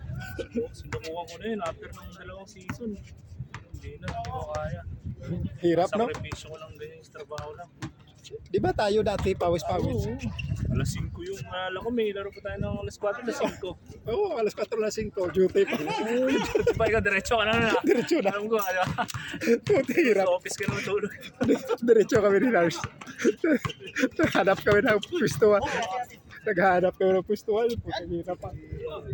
Sinukuha ko na yun after ng 2 season. Hindi na, hindi ko kaya. Hirap, no? Sakripisyo ko lang ganyan sa trabaho lang. Di ba tayo dati pawis-pawis? Oo. Alas 5 yung nalala ko, may laro pa tayo ng alas 4, alas 5. Oo, alas 4 na 5, duty pa. Diba ikaw, diretso ka na na. Diretso na. Alam ko, Puti, hirap. sa office ka na matulog. Diretso kami ni Lars. Naghanap kami ng pwestuhan. Naghanap kami ng pwestuhan. Puti, hirap pa.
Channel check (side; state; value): both; identical; correlation 1.00